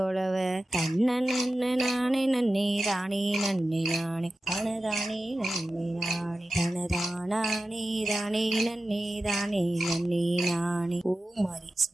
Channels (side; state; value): both; normal; correlation 0.94